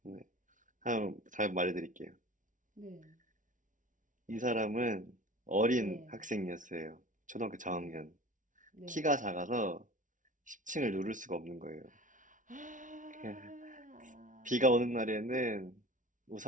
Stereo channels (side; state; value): left; late; 0.37 ms